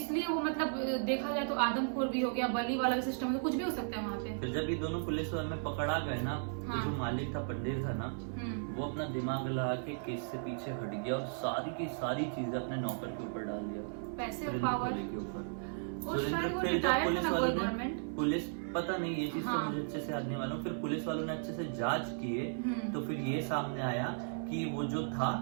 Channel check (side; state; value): left; silent; 54 dB below the other